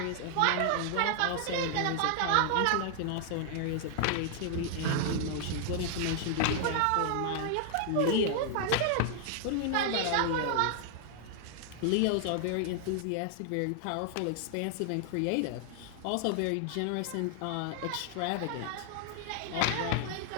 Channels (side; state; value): both; different; correlation 0.00